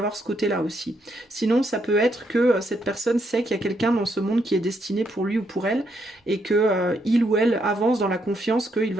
ce côté là aussi. Sinon ça peut être que cette personne sait qu'il y a quelqu'un dans ce monde qui est destiné pour lui ou pour elle, et que il ou elle avance dans la confiance qu'il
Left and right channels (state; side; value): normal; both; correlation 0.76